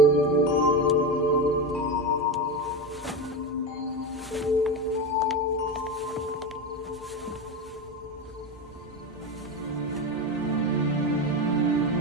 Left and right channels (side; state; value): both; normal; correlation 0.19